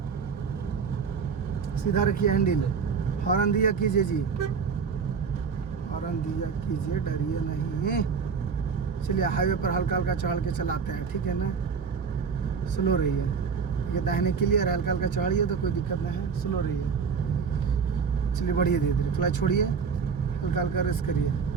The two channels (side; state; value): left; quieter; 5.8 dB